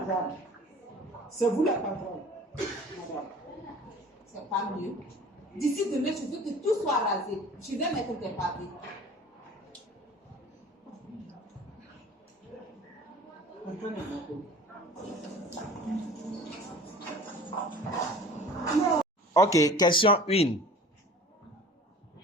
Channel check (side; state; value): both; normal; correlation 0.44